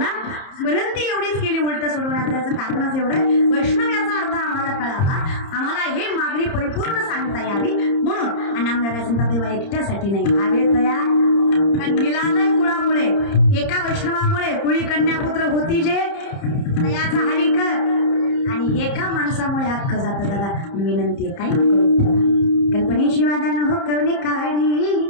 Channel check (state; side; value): late; right; 30 ms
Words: विनंती एवढीच केली उलटा सोडवण्याचं कारणच एवढं, वैष्णव याचा अर्थ आम्हाला कळावा, आम्हाला हे मागणी परिपूर्ण सांगता यावी म्हणून. आणि आमदार सांगता देवा एकट्यासाठी नाही, भावे तयार. कारण मिलालय कुळामुळे, एका वैष्णवामुळे कुळी कन्यापुत्र होती जे याचा हरी कर, आणि एका माणसामुळे अख्खं जातं. दादा विनंती आहे, काही नको कल्पनेची वादा न हो करणे काढी,